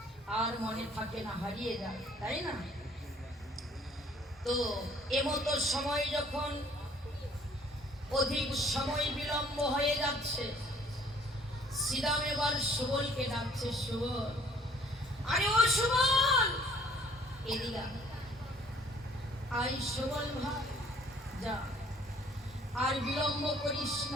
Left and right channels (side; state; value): both; normal; correlation 0.58